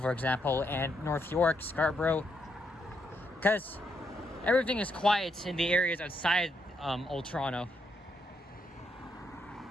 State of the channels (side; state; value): both; normal; correlation 0.78